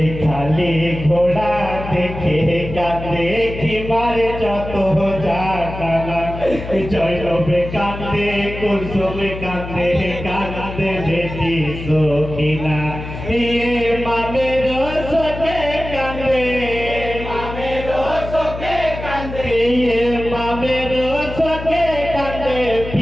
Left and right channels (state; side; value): noise; left; hum, 9 dB below the sound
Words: খালি ঘোড়া দেখে কাঁদে কি মারে যত জানা, জয়নবে কাঁদে কুলসুমে কাঁদে কাঁদে বেটি সখিনা, মামের সখে কাঁদে মামের সখে কাঁদে, মামের সখে কাঁদে